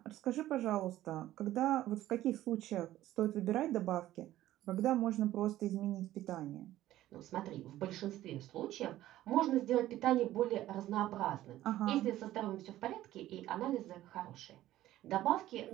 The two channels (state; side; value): quieter; left; 14.3 dB